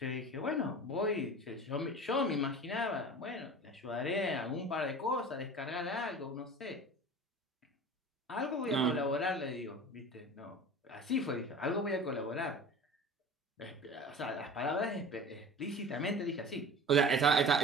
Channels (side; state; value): both; normal; correlation 0.37